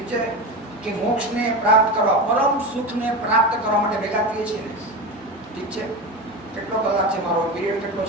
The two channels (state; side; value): normal; both; correlation 0.23